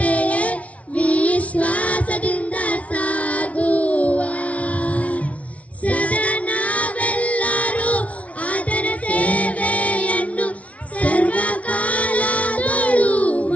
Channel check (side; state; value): right; late; 0.065 ms